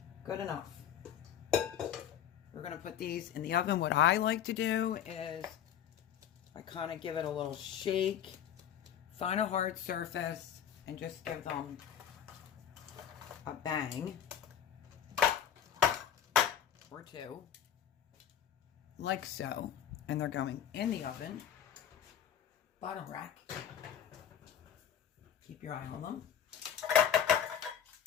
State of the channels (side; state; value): right; quieter; 9.4 dB